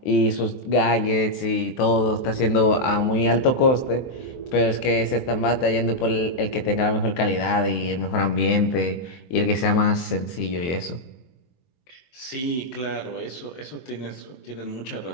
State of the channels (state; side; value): late; right; 23 ms